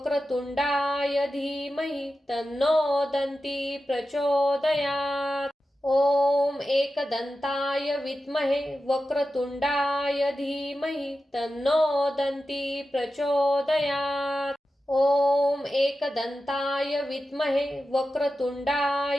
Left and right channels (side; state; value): both; normal; correlation 0.92